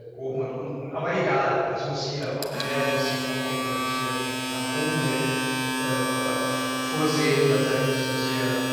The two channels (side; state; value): both; identical; correlation 1.00